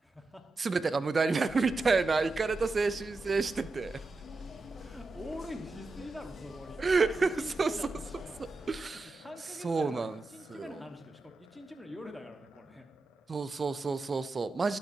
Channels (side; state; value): left; quieter; 3.5 dB